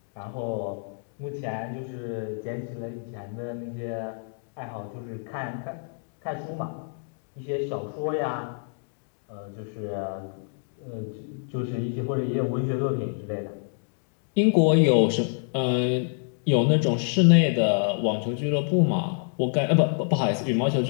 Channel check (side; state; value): right; silent; digital silence